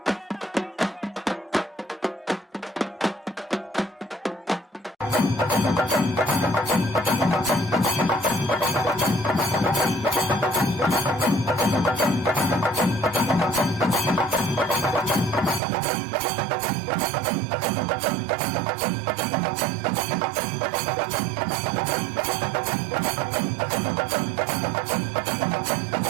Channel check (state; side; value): drops out; left; at 15.6 s